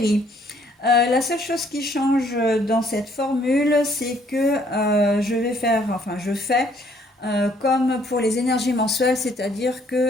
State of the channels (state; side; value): normal; both; correlation 0.64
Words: La seule chose qui change dans cette formule, c'est que je fais comme pour les énergies mensuelles, c'est-à-dire